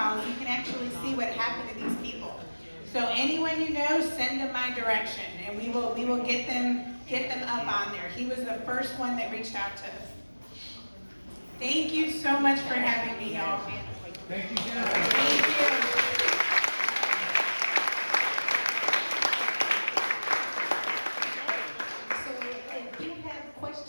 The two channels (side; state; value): both; inverted; correlation -1.00